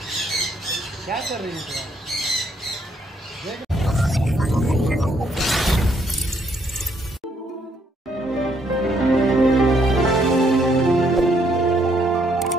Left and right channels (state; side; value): normal; both; correlation 0.71